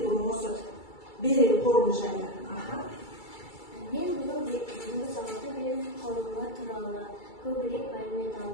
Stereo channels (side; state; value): right; late; 2.3 ms